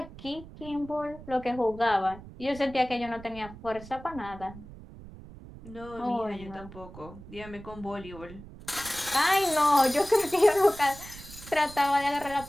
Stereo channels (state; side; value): noise; right; rumble, 16 dB below the sound